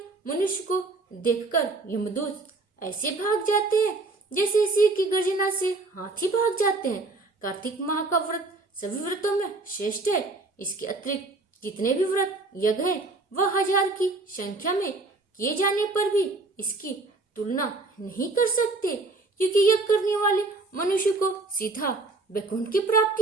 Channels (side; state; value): left; quieter; 3.4 dB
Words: मनुष्य को देखकर यमदूत ऐसे भाग जाते हैं जैसे सिंह की गर्जना से हाथी भाग जाते हैं। कार्तिक माह का व्रत सभी व्रतों में श्रेष्ठ है। इसके अतिरिक्त जितने भी व्रत यज्ञ है वह 1000 की संख्या में किए जाने पर भी इसकी तुलना नहीं कर सकते, क्योंकि यज्ञ करने वाले मनुष्य को सीधा वैकुंठ की प्राप्ति